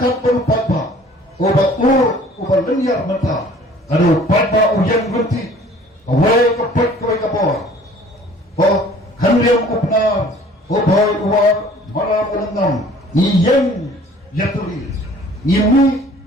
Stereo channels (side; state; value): both; normal; correlation 0.52